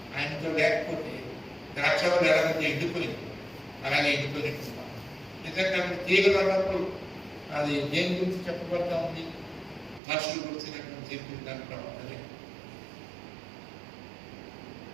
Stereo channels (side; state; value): left; drops out; at 10.0 s